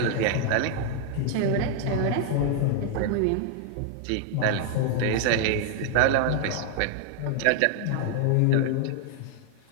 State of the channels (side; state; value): both; different; correlation 0.00